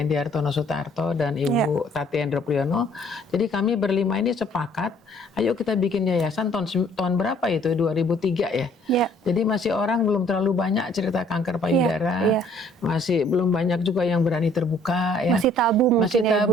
Sutarto dan Ibu Tati Endro Priyono. Jadi kami berlima ini sepakat, ayo kita bikin yayasan tahun berapa itu? 2003 ya. Jadi masih orang belum terlalu banyak cerita kanker payudara. Masih belum banyak juga yang berani terbuka ya. Masih tabu mungkin. Masih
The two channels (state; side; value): normal; both; correlation 0.60